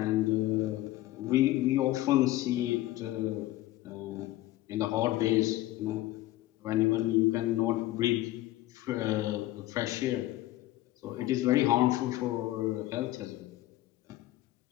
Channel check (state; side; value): quieter; right; 16.3 dB